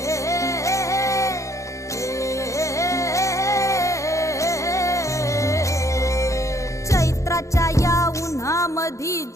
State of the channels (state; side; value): late; right; 0.15 ms